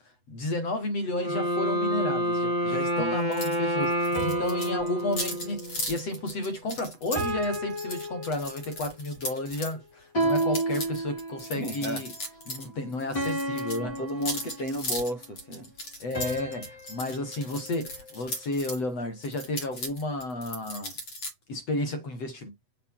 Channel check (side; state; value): right; late; 8.0 ms